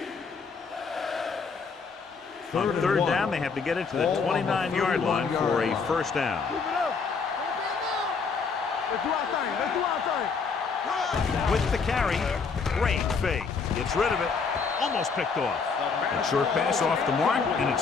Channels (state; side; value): quieter; right; 5.2 dB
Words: On 3rd down, they have to get it to the 29-yard line for a 1st down. Keep it up. Let's do our thing. Let's do our thing. With the carry, great fake. Gets rid of it. Almost picked off. A short pass off the mark, and